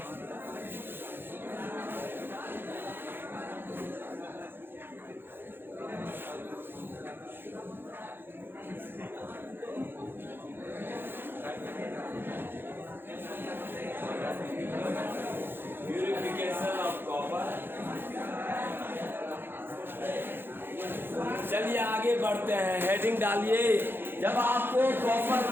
Purification of copper. चलिए आगे बढ़ते हैं, हेडिंग डालिए। जब आपको कॉपर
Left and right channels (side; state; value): left; late; 0.10 ms